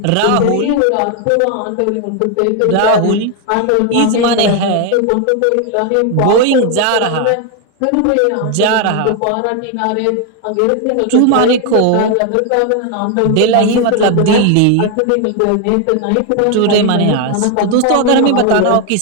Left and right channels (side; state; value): both; different; correlation 0.01